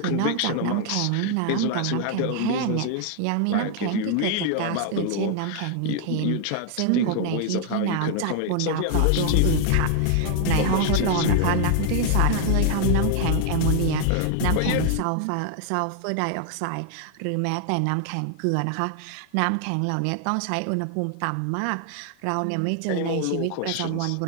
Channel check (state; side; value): different; both; correlation 0.00